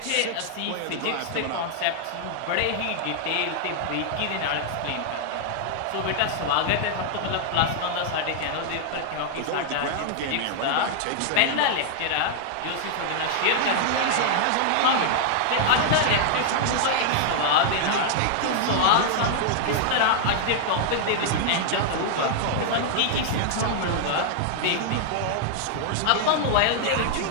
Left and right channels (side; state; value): both; different; correlation -0.01